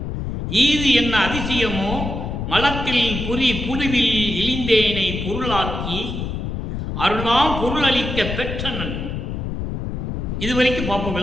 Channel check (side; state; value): left; noise; rumble, 4 dB below the sound